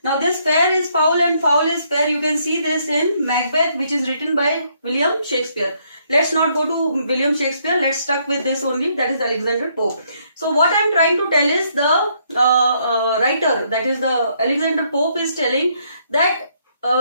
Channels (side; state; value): both; inverted; correlation -0.71